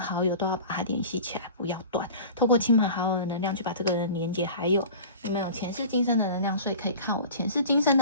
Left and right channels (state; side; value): inverted; both; correlation -0.38